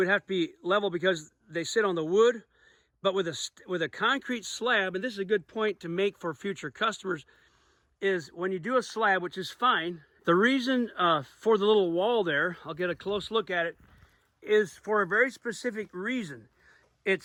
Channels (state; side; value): identical; both; correlation 1.00